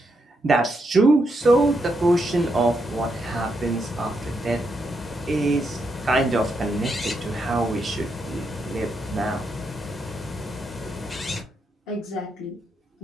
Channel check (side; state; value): both; normal; correlation 0.81